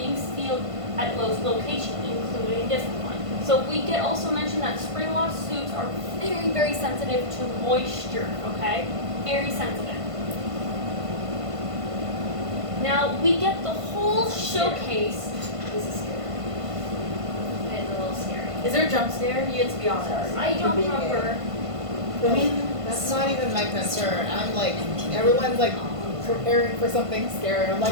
sealed at most locations, including this one. So we get also mentioned that spring lock suits are very, very sensitive to moisture, okay? Very sensitive. Now, we get the whole showcase. This is scary. It's a little scary. Is there a jump scare? You get to be honest. I don't remember. I mean, that's not even my concern. I'm like, everyone's like preparing for something scary. I'm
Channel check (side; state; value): left; late; 1.5 ms